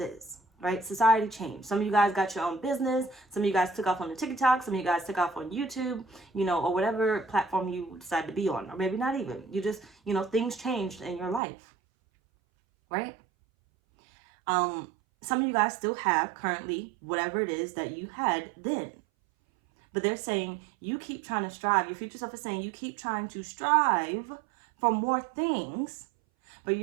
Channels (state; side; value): drops out; left; at 11.4 s